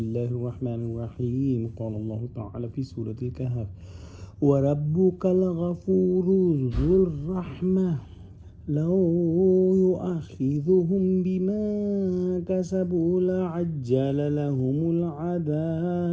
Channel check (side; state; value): both; identical; correlation 1.00